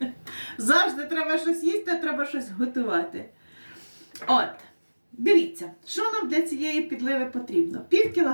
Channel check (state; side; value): inverted; both; correlation -1.00